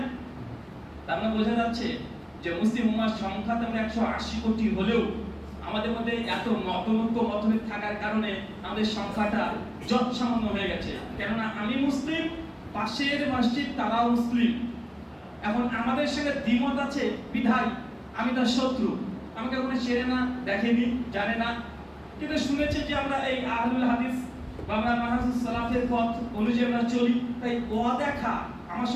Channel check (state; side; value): identical; both; correlation 1.00